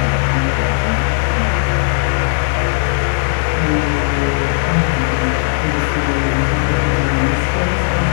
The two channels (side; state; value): right; silent; digital silence